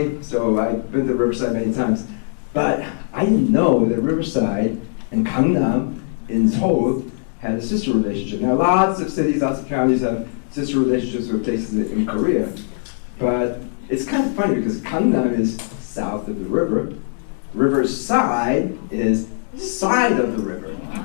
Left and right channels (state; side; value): silent; right; digital silence